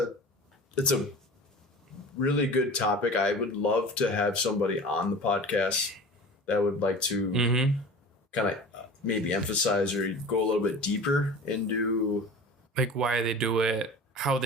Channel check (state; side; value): normal; both; correlation 0.37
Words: really good topic. I would love to have somebody on the podcast that would like to kind of maybe emphasize or go a little bit deeper into like why they do it, how